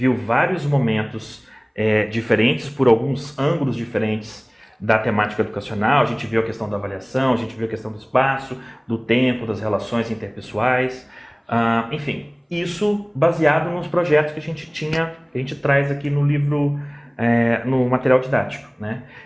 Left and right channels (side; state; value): both; identical; correlation 1.00